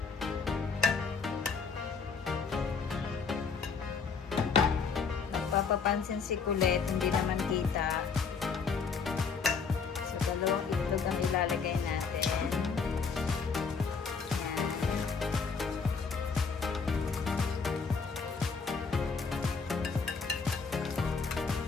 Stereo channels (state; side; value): quieter; right; 5.3 dB